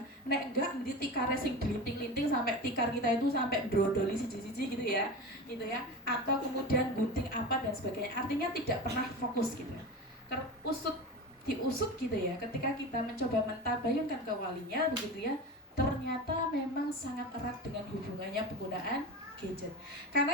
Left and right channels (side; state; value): both; normal; correlation 0.27